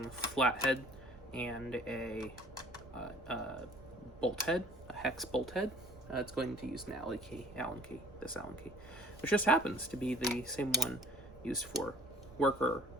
flathead and a bolt head, a hex bolt head, it's going to use an Allen key, this Allen key, which just happens to be the same one used for worker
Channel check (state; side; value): noise; right; rumble, 19 dB below the sound